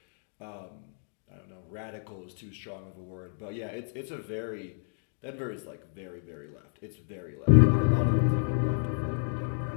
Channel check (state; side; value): silent; right; digital silence